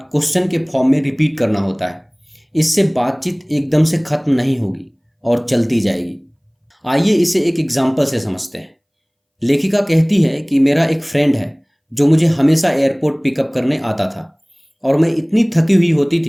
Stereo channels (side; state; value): both; identical; correlation 1.00